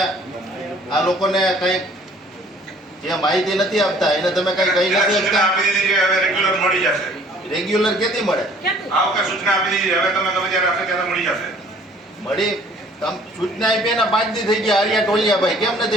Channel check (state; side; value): normal; both; correlation 0.55